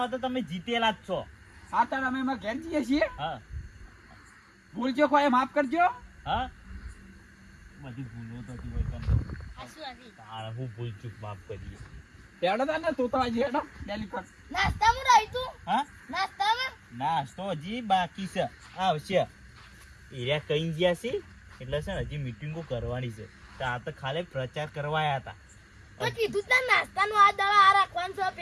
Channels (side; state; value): both; identical; correlation 1.00